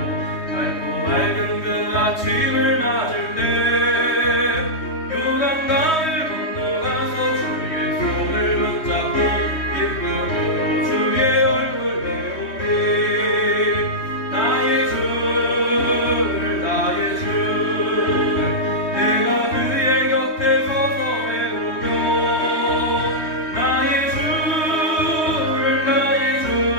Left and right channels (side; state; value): right; late; 3.2 ms